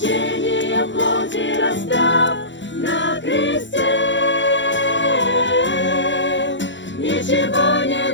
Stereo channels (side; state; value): right; late; 0.54 ms